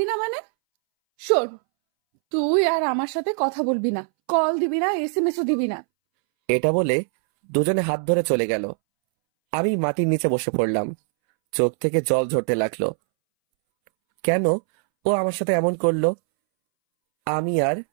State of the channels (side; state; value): left; silent; 64 dB below the other